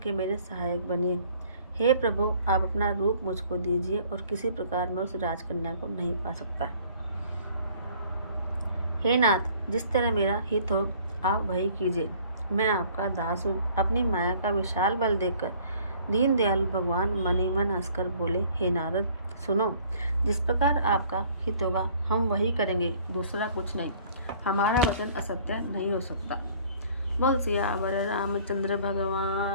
मेरे सहायक बनिए। हे प्रभु, आप अपना रूप मुझको दीजिए और किसी प्रकार मैं उस राजकन्या को नहीं पा सकता। हे नाथ, जिस तरह मेरा हित हो आप वही कीजिए। मैं आपका दास हूँ। अपनी माया का विशाल बल देखकर दीन दयालु भगवान मन ही मन हंसकर बोले, हे नारद, सुनो, जिस प्रकार आपका हित होगा हम वही करेंगे, दूसरा कुछ नहीं। हमारा वचन असत्य नहीं हो सकता। बोल सियावर रामचंद्र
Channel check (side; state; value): both; inverted; correlation -0.55